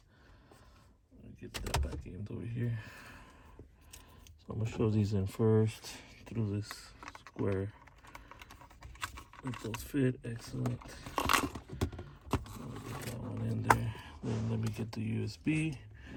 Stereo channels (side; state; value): both; identical; correlation 1.00